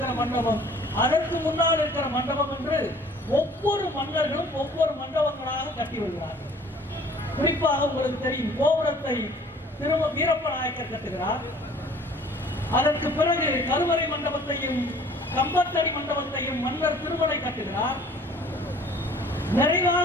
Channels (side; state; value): both; normal; correlation 0.52